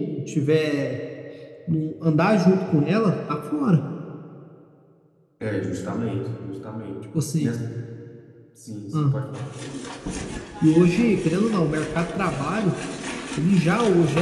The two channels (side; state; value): both; identical; correlation 1.00